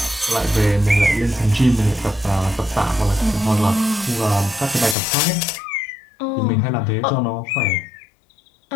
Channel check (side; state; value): right; drops out; at 5.0 s